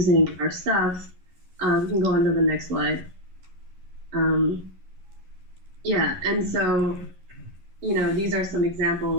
our stuff. You can go on to the next slide. And so, these are some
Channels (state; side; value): late; left; 11 ms